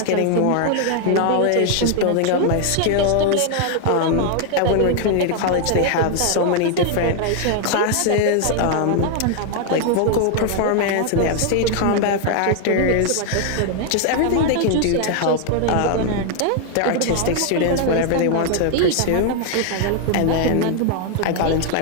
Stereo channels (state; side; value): different; both; correlation 0.00